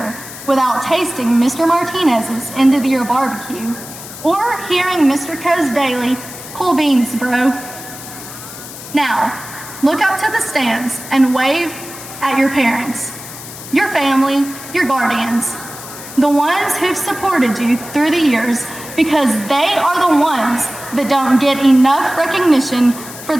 without tasting Mr. Martinez's end of the year barbecue or hearing Mr. Coe's daily, cool beans, bro. Now, look up to the stands and wave at your parents, your family, your guardians, the ones who've supported you through the years, because they are the ones that don't get enough recognition for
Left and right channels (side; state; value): left; noise; hiss, 13 dB below the sound